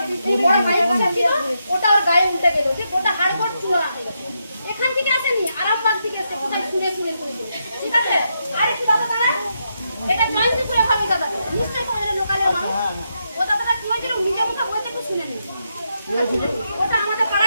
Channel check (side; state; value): both; inverted; correlation -0.83